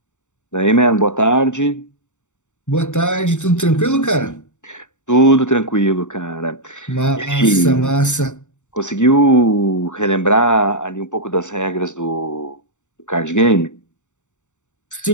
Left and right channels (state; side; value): late; right; 0.84 ms